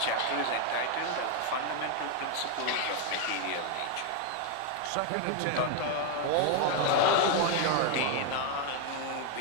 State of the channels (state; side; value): different; both; correlation 0.01